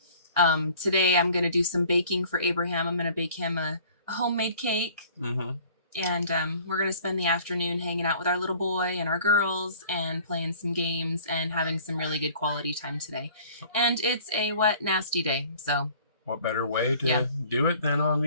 today I'm going to do some baking for Abraham. I'm going to bake him a homemade cake. Mm-hmm. And we're going to spend the afternoon hanging out with our little boy and our girls and playing some games and having some really good quality time today. And it's a wet, nasty day. So what better way to do it than on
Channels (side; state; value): both; inverted; correlation -0.51